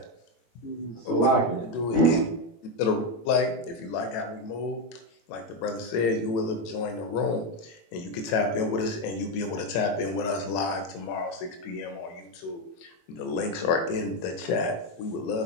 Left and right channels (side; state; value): right; late; 18 ms